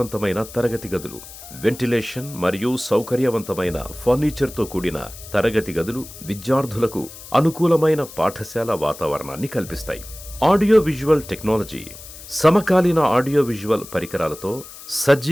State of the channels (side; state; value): left; noise; hiss, 16 dB below the sound